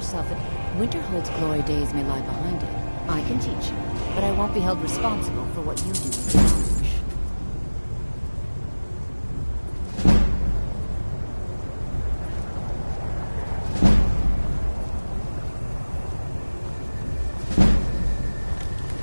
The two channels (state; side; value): inverted; both; correlation -1.00